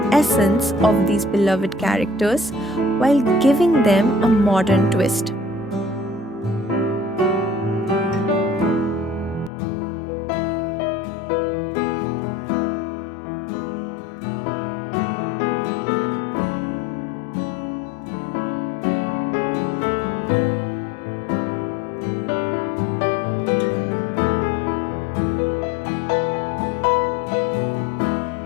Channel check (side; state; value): right; drops out; at 9.5 s